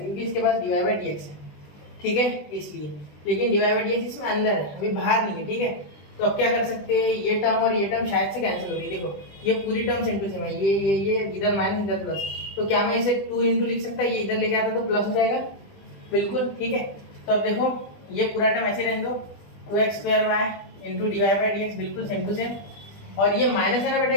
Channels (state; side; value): late; right; 20 ms